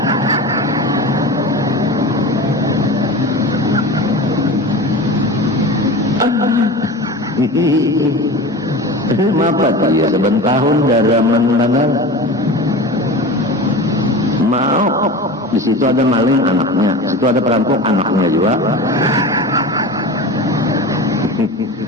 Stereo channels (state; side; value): normal; both; correlation 0.31